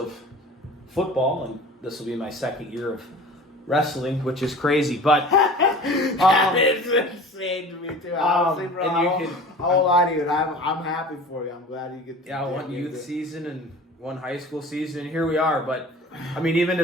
football, and this will be my 2nd year of wrestling, which is crazy. But it's insane to me too. Honestly, bro, I won't lie to you. I'm happy for you. I'm glad you get. One youth season and one high school season, and here we are. But I mean, even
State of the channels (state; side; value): normal; both; correlation 0.41